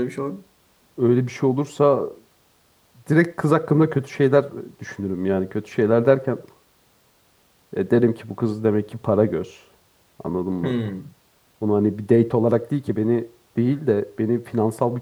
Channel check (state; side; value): identical; both; correlation 1.00